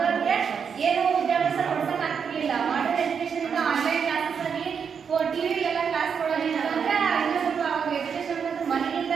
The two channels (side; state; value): left; quieter; 6.7 dB